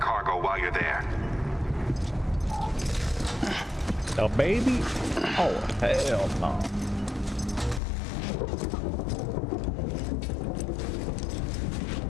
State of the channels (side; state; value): right; drops out; at 7.8 s